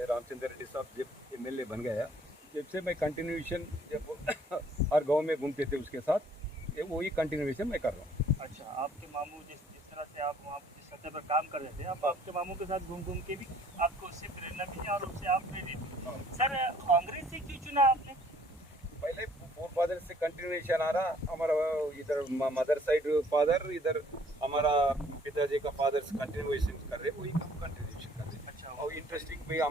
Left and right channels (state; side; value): normal; both; correlation 0.59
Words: रामचंद्र रेड्डी साहब जब एमएलए बन गया, जब से मैं कंटिन्यूएशन, जब हर गांव में घूमते थे उसके साथ, ये वही कंटिन्यूएशन मैं कर रहा हूँ। अच्छा, आपके मामू जिस तरह से आप वहाँ जिस सतह पर काम कर रहे थे, आप आपके मामू के साथ घूम घूम के भी आपको उससे प्रेरणा मिली और उससे आप प्रेरित। सर, कांग्रेस से क्यों चुना आपने? पहले फादर से कंटिन्यूएशन आ रहा, हमारा इधर मदर साइड फादर, इधर हमारा पिताजी का फादर कंटिन्यूएशन कर रहे, वही कंटिन्यूएशन कर रहे। अच्छा, और इंटरेस्टिंग भी